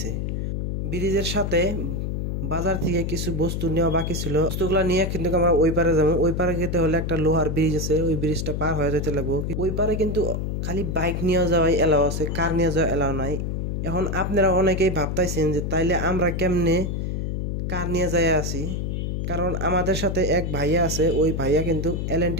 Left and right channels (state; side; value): noise; left; hum, 2 dB below the sound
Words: ব্রিজের সাথে বাজার থেকে কিছু বস্তু নেওয়া বাকি ছিল, বস্তুগুলো নিয়ে কিন্তু আমরা ওই পারে যাবো। ওই পারে যেতে হলে একটা লোহার ব্রিজ আছে, ওই ব্রিজটা পার হয়ে যেতে লাগবো। ওই পারে কিন্তু খালি বাইক নিয়ে যাওয়াই এলাও আছে, কার নিয়ে যাওয়া এলাও নাই। এখন আপনারা অনেকেই ভাবতাইছেন যে তাইলে আমরা কেমনে কার নিয়ে যায় আছি, কারণ আমাদের সাথে এক ভাইয়া আছে, ওই ভাইয়া কিন্তু